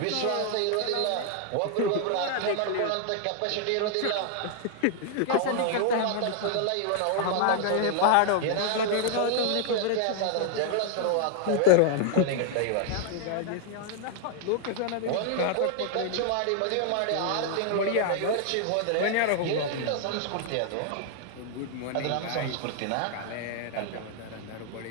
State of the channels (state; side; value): different; both; correlation 0.00